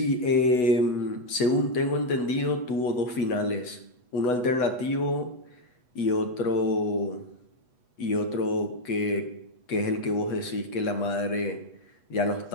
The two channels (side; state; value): right; late; 8.1 ms